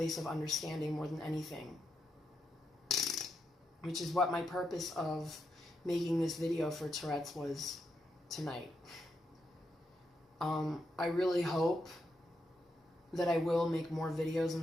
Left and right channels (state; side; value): normal; both; correlation 0.83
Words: of understanding more than anything. Which is what my purpose of making this video for Tourette's was tonight. I really hope that I will make more videos in